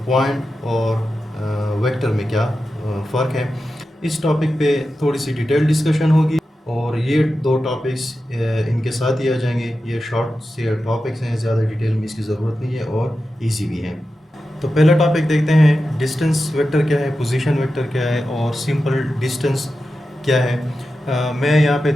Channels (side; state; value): both; normal; correlation 0.91